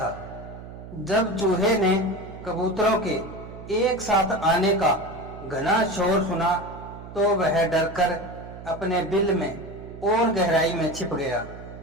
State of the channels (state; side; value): noise; right; hum, 14 dB below the sound